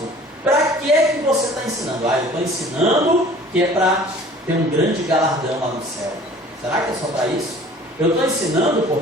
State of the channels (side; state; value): both; normal; correlation 0.48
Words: Para que é que você está ensinando? Eu estou ensinando que é para ter um grande galardão lá no céu. Será que é só para isso? Eu estou ensinando